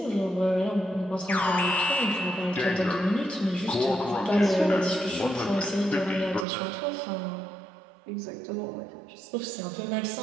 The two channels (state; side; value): drops out; left; at 6.5 s